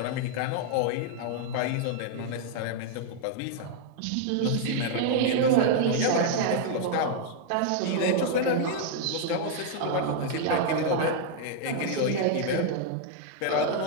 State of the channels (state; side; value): different; both; correlation -0.01